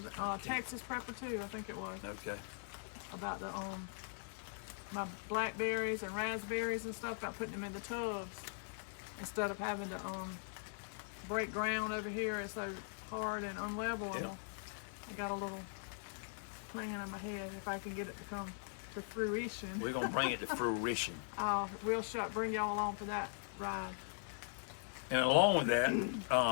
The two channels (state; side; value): silent; right; digital silence